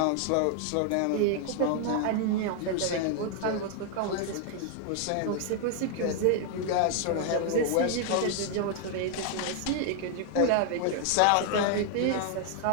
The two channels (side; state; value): both; different; correlation 0.00